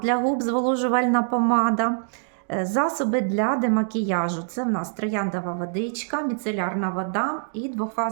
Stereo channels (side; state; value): left; silent; digital silence